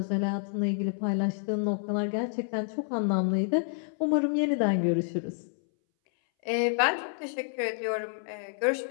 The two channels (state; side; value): silent; right; 59 dB below the other